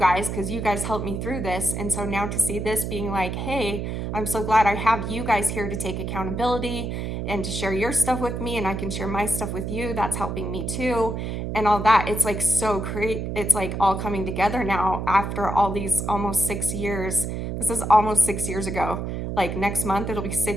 because you guys helped me through this, and so now to see this being like, hey, I'm so glad I have you guys here to take accountability and to share your stuff with me, and I can share my stuff with you. That's helping me too, and all that. It's like so great. It's like all coming together now after all these almost 6 years. This is almost 6 years ago. Like next month, it'll be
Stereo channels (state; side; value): noise; right; hum, 4 dB below the sound